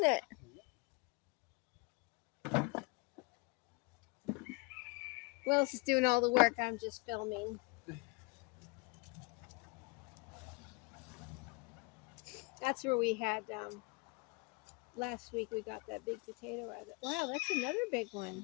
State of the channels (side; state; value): right; quieter; 28.1 dB